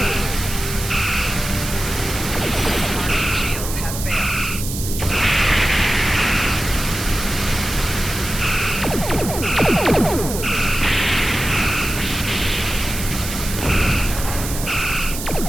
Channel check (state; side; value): noise; right; hiss, 7 dB below the sound